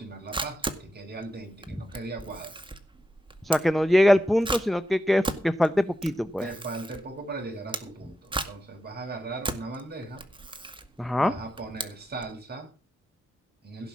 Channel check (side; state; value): both; normal; correlation 0.87